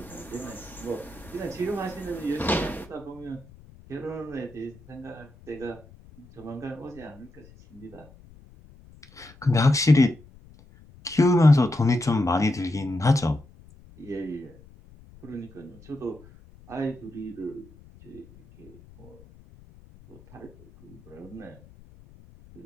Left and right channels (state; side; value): noise; left; rumble, 23 dB below the sound